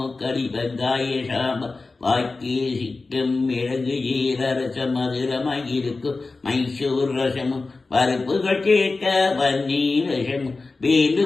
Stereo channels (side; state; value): right; quieter; 3.7 dB